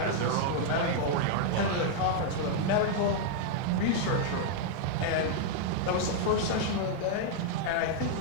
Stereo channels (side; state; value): both; different; correlation 0.00